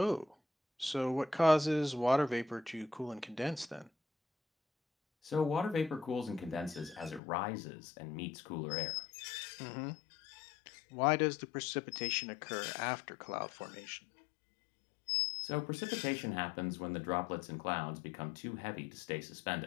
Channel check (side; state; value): right; drops out; at 7.2 s